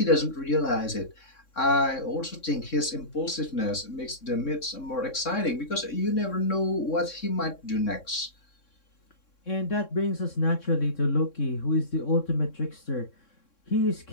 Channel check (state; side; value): late; right; 3.6 ms